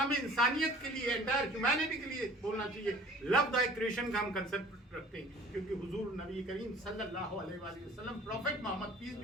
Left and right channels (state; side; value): normal; both; correlation 0.48